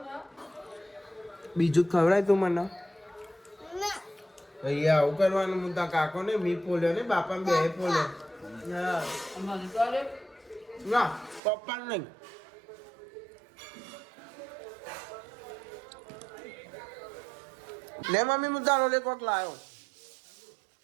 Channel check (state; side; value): drops out; left; at 11.4 s